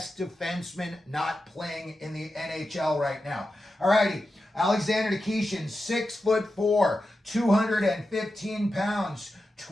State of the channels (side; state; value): both; normal; correlation 0.91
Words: defenseman not playing in the NHL right now. Alrighty, Alexander Nikishin, 6'4", 215 pounds,